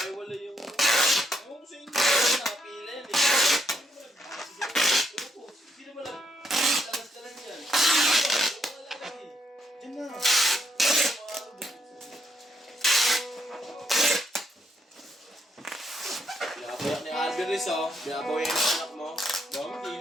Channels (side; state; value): both; normal; correlation 0.76